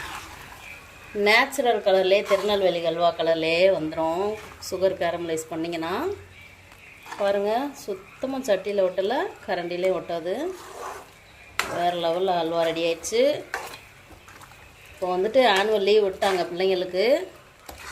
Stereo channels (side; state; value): both; identical; correlation 1.00